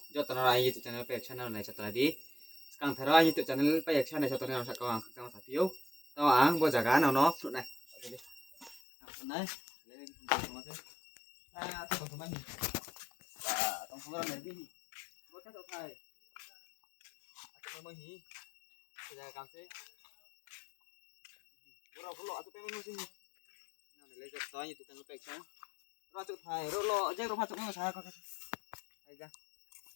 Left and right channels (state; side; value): drops out; right; at 8.8 s